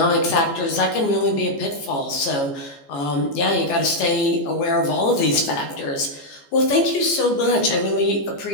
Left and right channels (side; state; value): right; late; 14 ms